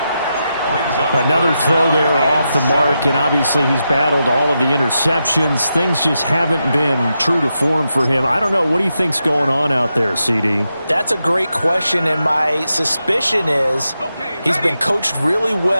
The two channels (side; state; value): both; inverted; correlation -0.87